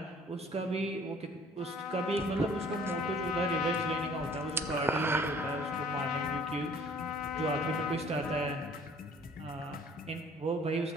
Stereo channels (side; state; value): both; normal; correlation 0.54